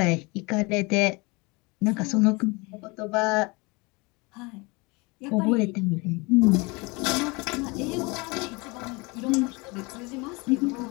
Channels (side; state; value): right; quieter; 26.7 dB